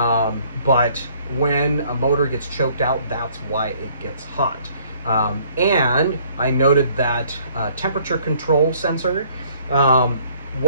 But when a motor gets choked out, that's why it gets hot. And I noted that temperature control sensor,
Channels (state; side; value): inverted; both; correlation -0.60